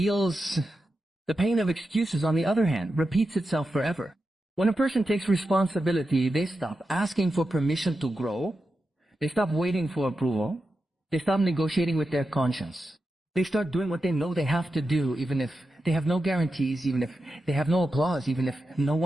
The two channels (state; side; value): normal; both; correlation 0.90